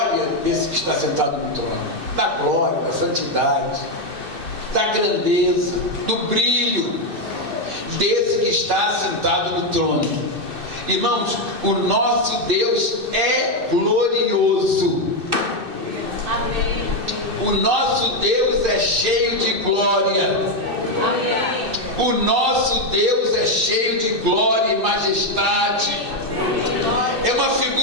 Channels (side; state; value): left; late; 2.6 ms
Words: desse que está sentado no trono, da glória, da santidade, da grandeza, do brilho desse que está sentado no trono. Irmãos, o nosso Deus é glorioso. Amém. O nosso Deus é cheio de glória. Amém. O nosso Deus é cheio de glória e majestade. É uma